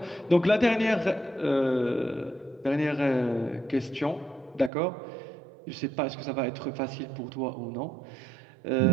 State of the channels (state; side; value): drops out; left; at 4.7 s